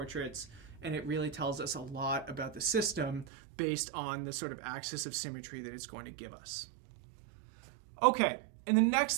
and it really tells us a lot about the system based on the sort of axis of symmetry that it's going to give us. Okay. In the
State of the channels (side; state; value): left; drops out; at 3.2 s